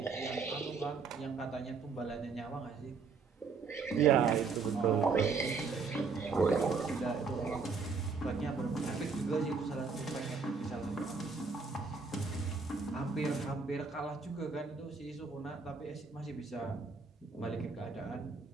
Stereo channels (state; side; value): quieter; left; 4.8 dB